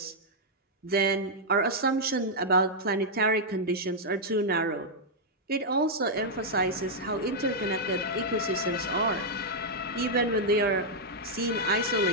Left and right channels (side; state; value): both; normal; correlation -0.05